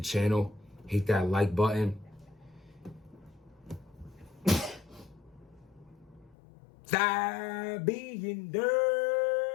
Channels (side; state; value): right; drops out; at 6.4 s